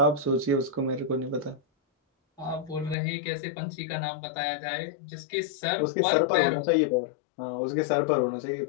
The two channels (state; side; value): drops out; right; at 3.0 s